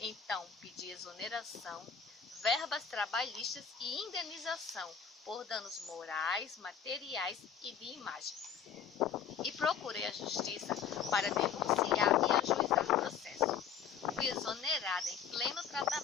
pedi exoneração, verbas trabalhistas e indenização por danos morais, materiais e de imagem. E procurei a justiça para denunciar e ajuizar o processo. Fui exonerada em pleno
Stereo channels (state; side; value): quieter; right; 7.4 dB